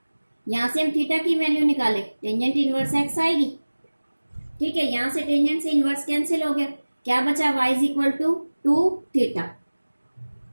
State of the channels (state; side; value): inverted; both; correlation -1.00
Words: यहाँ से हम थीटा की वैल्यू निकाले, टेंजेंट इनवर्स एक्स आएगी, ठीक है। यहाँ से टेंजेंट से इनवर्स कैंसिल हो गया, क्या बचा, y is equal to 2 theta,